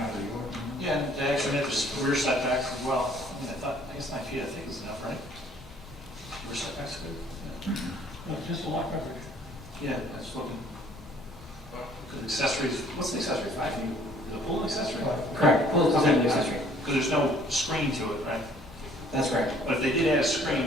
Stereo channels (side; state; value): both; normal; correlation 0.58